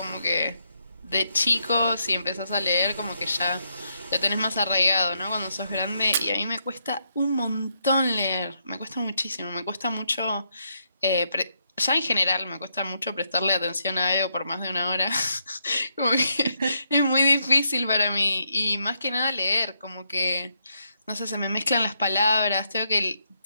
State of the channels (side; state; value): both; inverted; correlation -0.79